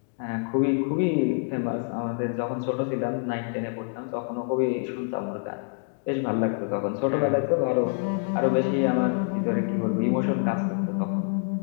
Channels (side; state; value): right; silent; 57 dB below the other